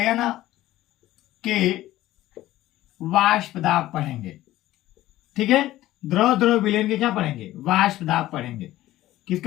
के वाष्प दाब पढ़ेंगे। ठीक है, द्रव द्रव विलयन के क्या पढ़ेंगे, वाष्प दाब पढ़ेंगे।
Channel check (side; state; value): right; quieter; 15.3 dB